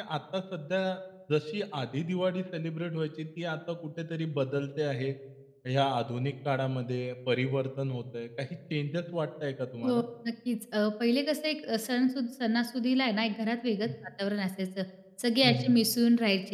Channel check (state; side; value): identical; both; correlation 1.00